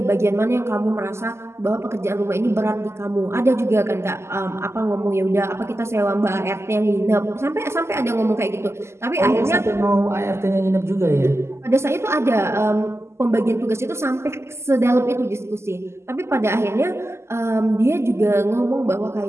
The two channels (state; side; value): late; left; 0.13 ms